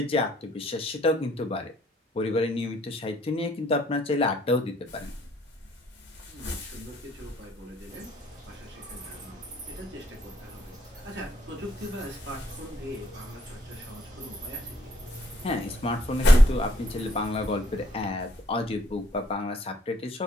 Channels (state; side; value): normal; both; correlation 0.65